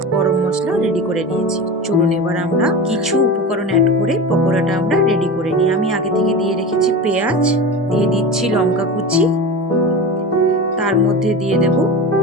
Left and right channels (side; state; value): both; normal; correlation 0.28